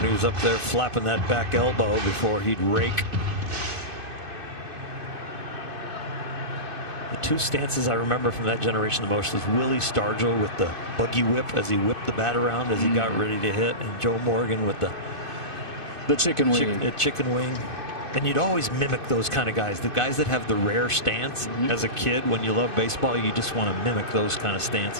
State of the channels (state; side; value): late; left; 2.6 ms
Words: he was up there flapping that back elbow before he'd rake. The 2 stances I remember from that generation the most was Willie Stargell with the buggy whip as he whipped the bat around as he got ready to hit, and Joe Morgan with the chicken wing. Chicken wing. And you'd always mimic those kind of guys, the guys that have the rare stance. As a kid, when you love baseball, you just want to mimic those kind of